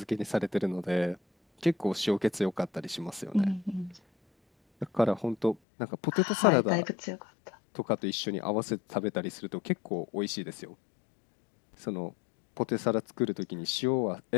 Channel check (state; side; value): drops out; right; at 5.6 s